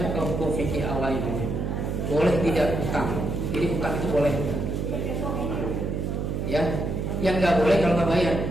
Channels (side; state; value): right; noise; hum, 2 dB below the sound